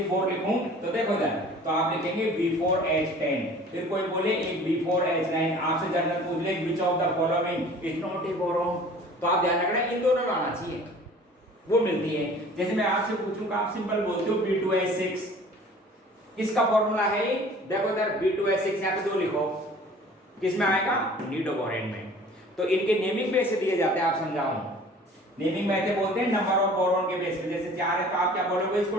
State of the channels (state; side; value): normal; both; correlation 0.47